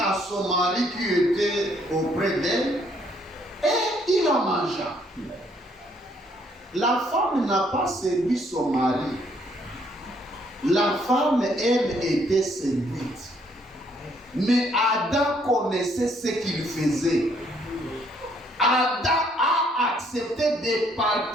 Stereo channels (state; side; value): normal; both; correlation 0.68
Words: son mari qui était auprès d'elle, et il en mangea. La femme n'a pas séduit son mari. La femme, elle, était séduite. Mais Adam connaissait ce qu'il faisait. Adam a accepté de